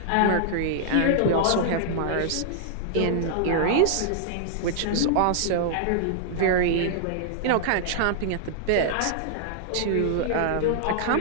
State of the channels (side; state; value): both; different; correlation -0.01